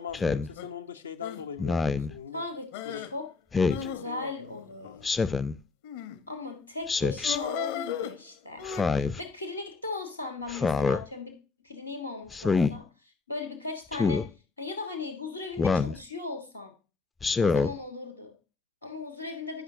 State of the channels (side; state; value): right; quieter; 4.2 dB